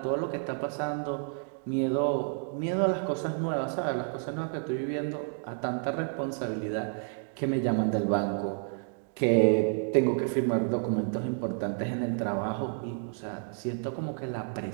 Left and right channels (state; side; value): silent; left; 58 dB below the other